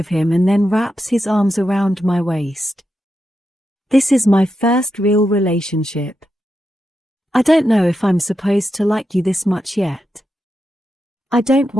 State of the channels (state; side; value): normal; both; correlation 0.87